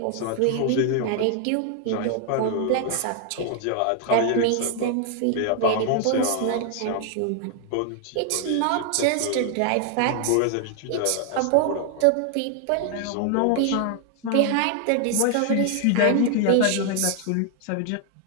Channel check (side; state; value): both; different; correlation 0.00